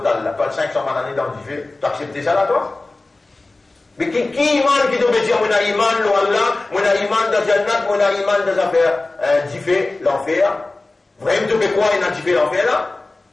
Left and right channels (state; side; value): quieter; right; 3.2 dB